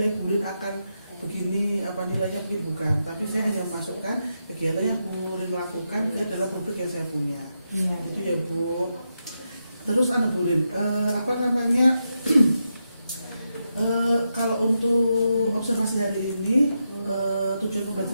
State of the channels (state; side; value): inverted; both; correlation -0.86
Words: Bu Rin akan begini, nilainya mungkin bukan, tapi saya hanya masukkan kegiatan yang Bu Rin lakukan ke dalam rubrik yang saya punya. Itu ya Bu. Terus Bu Rin, kalau untuk observasi hari ini tujuan